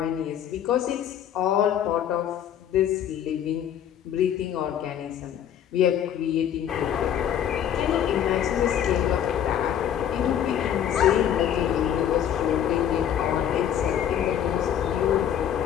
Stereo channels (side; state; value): right; quieter; 9.8 dB